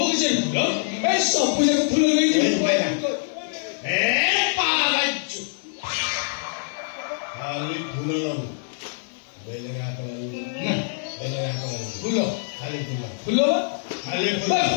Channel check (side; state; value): right; silent; digital silence